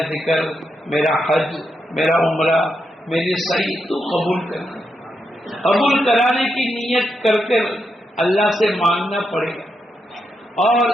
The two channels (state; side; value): normal; both; correlation 0.83